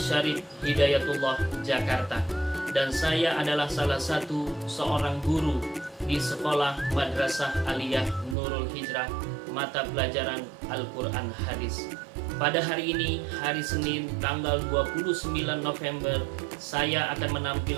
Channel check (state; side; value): drops out; left; at 8.3 s